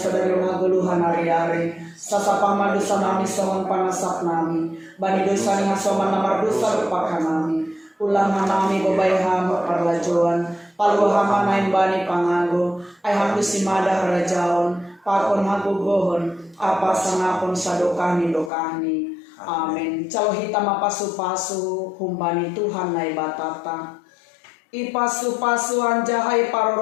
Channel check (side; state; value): right; drops out; at 18.5 s